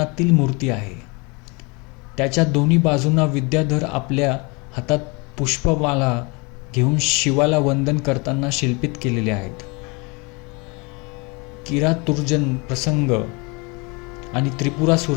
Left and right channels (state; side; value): quieter; right; 29.2 dB